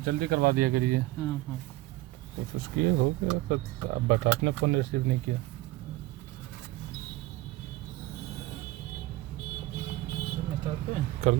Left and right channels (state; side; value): quieter; left; 18.0 dB